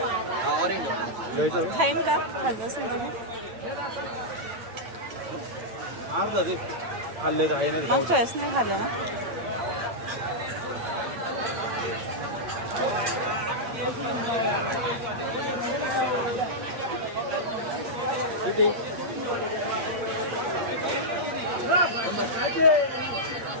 घ्यायचं खाईन का? खायचं असेल तर अर्धा ते खाल्ले का आहे नाही खाऊ. मागच्या वेळेस नाही खाल्लं ना. किती?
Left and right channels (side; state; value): left; late; 8.9 ms